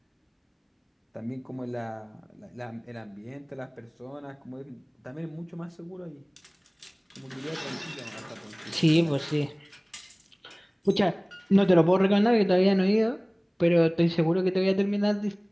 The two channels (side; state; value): both; identical; correlation 1.00